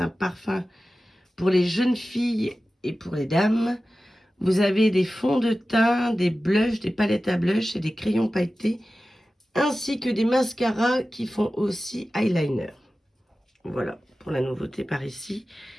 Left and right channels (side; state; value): both; normal; correlation 0.95